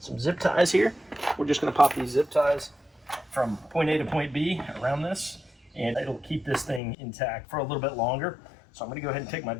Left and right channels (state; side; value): drops out; right; at 6.8 s